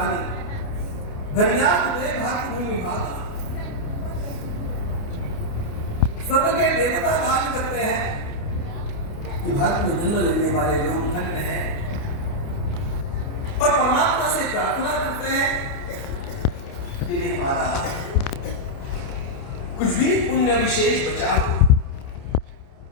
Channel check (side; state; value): right; late; 29 ms